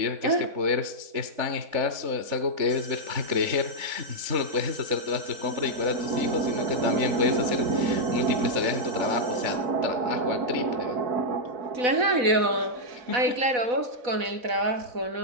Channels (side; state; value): left; late; 4.1 ms